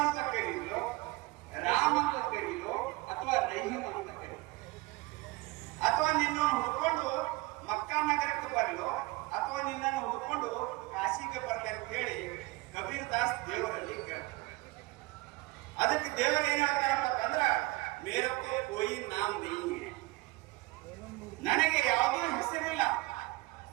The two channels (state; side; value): quieter; left; 22.3 dB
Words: ಅಂತ ಕರೀಲೋ, ರಾಮ್ ಅಂತ ಕರೀಲೋ, ಅಥವಾ ರಹೀಮ್ ಅಂತ ಕರೀಲೋ? ಅಥವಾ ನಿನ್ನನ್ನು ಹುಡ್ಕೊಂಡು ಮಕ್ಕಾ ನಗರಕ್ಕೆ ಬರಲೋ, ಅಥವಾ ನಿನ್ನನ್ನು ಹುಡ್ಕೊಂಡು ಕಾಶಿಗೆ ಬರಲಿ ಅಂತ ಹೇಳಿ ಕಬೀರ್ ದಾಸ್ ದೇವರಲ್ಲಿ ಕೇಳ್ತಾರೆ. ಅದಕ್ಕೆ ದೇವರು ಏನ್ ಹೇಳ್ತಾರಪ್ಪ ಅಂದ್ರ, ಮೇರಕ್ಕೂ ಕೋಯಿ ನಾಮ್ ನಹೀ ಹೈ, ನನಗೆ ಯಾವುದೂ ಹೆಸರಿಲ್ಲ.